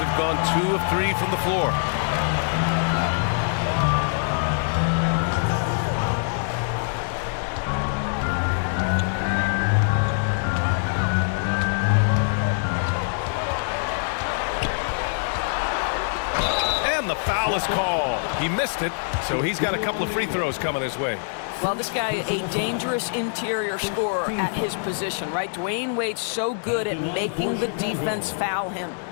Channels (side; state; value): right; silent; digital silence